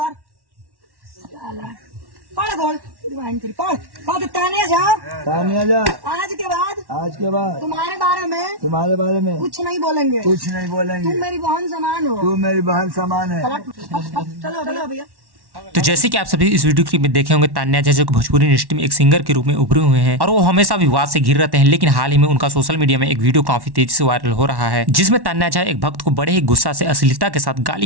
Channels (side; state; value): left; late; 1.1 ms